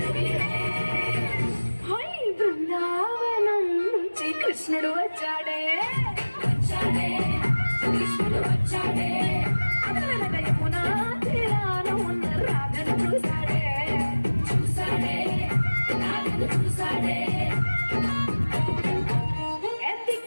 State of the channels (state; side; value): inverted; both; correlation -1.00